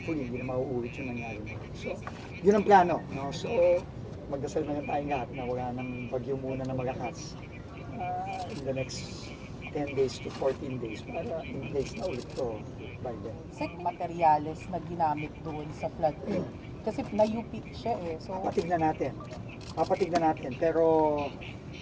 hindi na mauulit yung nangyari. So, yun ang plano, no? So, magdasal na lang tayong lahat na wala nang bagyo muna na malakas in the next 10 days to 14 days para in place na ulit to by then. Sek, materyales na ginamit doon sa floodgate. Kasi na-UP siya eh. So, Papatignan natin. Pero,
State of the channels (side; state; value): both; identical; correlation 1.00